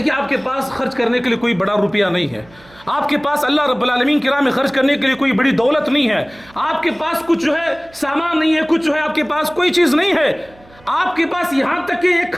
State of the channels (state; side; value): noise; right; hum, 26 dB below the sound